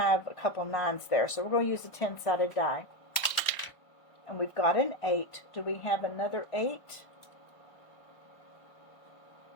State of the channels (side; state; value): right; late; 1.3 ms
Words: a couple 9s there. So we're going to use a 10-sided die. And we've got an 8. Do we have another 8?